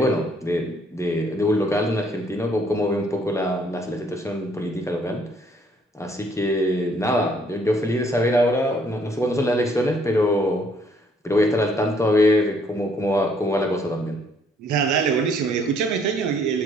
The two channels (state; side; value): normal; both; correlation 0.64